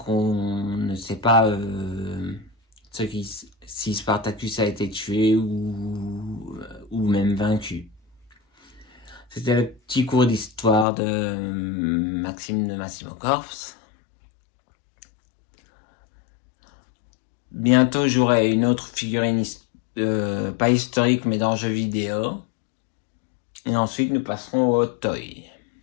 on ne sait pas si Spartacus a été tué ou même vaincu. C'était le petit cours d'histoire de Maxime de Massimocorps. Bientôt j'aurai une autre figurine, pas historique mais dans jeux vidéo. Et ensuite, nous passerons au toy.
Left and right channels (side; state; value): right; drops out; at 10.9 s